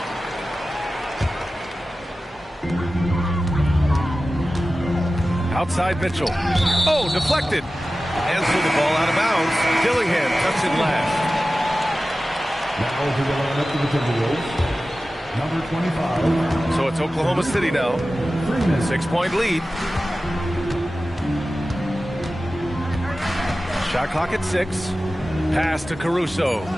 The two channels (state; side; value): normal; both; correlation 0.95